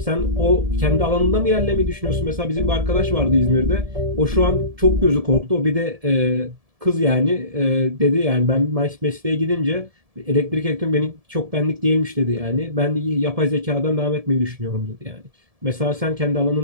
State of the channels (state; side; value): late; left; 1.7 ms